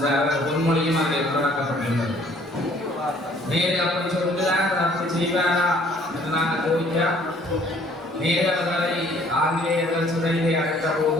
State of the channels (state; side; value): normal; both; correlation 0.59